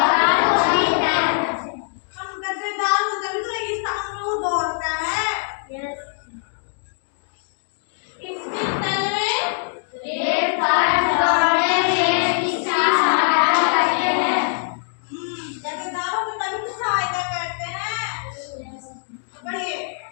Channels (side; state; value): right; silent; digital silence